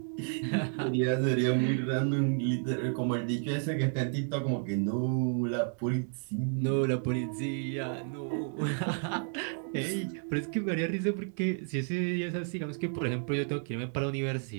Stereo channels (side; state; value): left; silent; 57 dB below the other